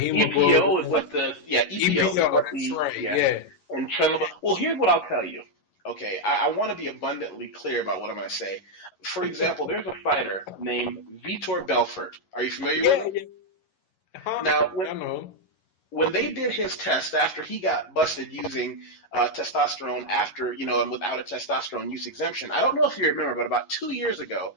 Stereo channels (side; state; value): right; late; 11 ms